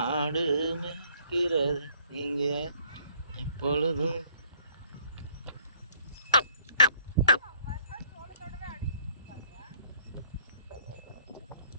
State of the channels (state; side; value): inverted; both; correlation -0.61